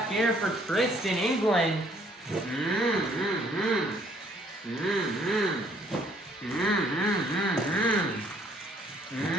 here for Tristan, England.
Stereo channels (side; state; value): both; normal; correlation 0.64